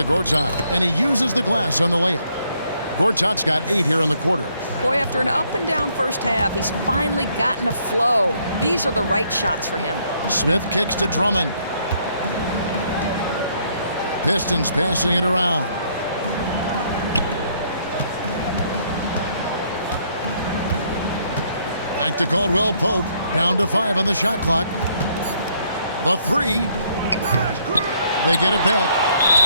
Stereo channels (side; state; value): both; inverted; correlation -0.69